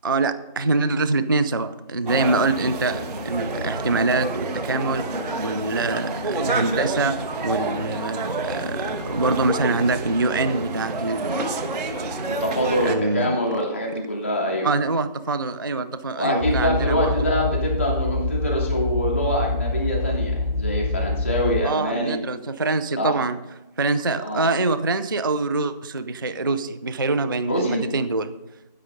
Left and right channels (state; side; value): inverted; both; correlation -0.40